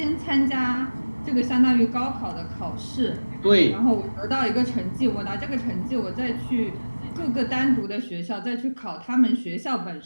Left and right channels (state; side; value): inverted; both; correlation -1.00